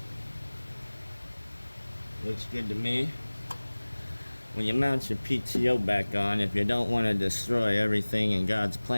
Looks good to me. When you mount your PTO back on, if you don't want to destroy everything in God's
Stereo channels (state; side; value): inverted; both; correlation -1.00